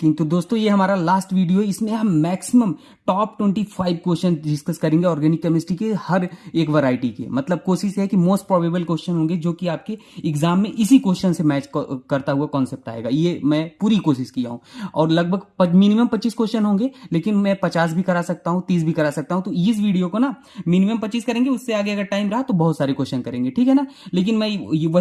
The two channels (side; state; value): both; identical; correlation 1.00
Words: तो दोस्तों, ये हमारा लास्ट वीडियो है। इसमें हम मैक्सिमम टॉप 25 क्वेश्चन डिस्कस करेंगे ऑर्गेनिक केमिस्ट्री के हर एक वैरायटी के। मतलब कोशिश है कि मोस्ट प्रोबेबल क्वेश्चन होंगे जो कि आपके एग्जाम में इसी क्वेश्चन से मैच करता हुआ कॉन्सेप्ट आएगा। ये मैं पूरी कोशिश किया हूँ और लगभग मिनिमम 25 क्वेश्चन होंगे, लेकिन मैं 50 भी करा सकता हूँ, 30 भी करा सकता हूँ। तो इस वीडियो को ना मिनिमम 25 करेंगे, उससे आगे अगर टाइम रहा तो बहुत सारे क्वेश्चन करेंगे, ठीक है ना। लेकिन मैं